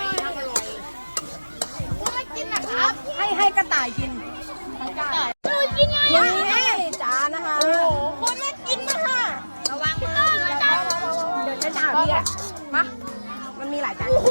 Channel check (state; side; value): inverted; both; correlation -1.00